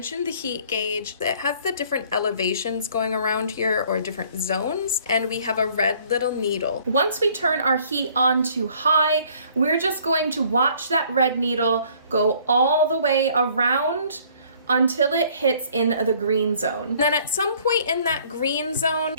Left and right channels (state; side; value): inverted; both; correlation -0.58